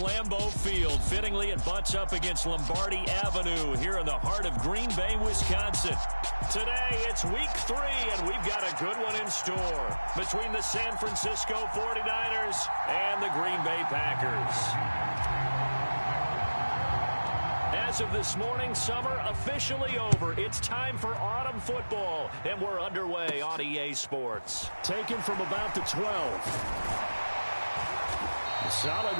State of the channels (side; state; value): both; inverted; correlation -1.00